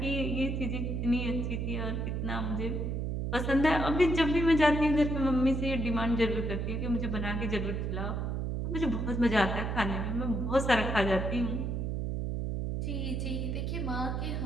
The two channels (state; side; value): noise; right; hum, 1 dB below the sound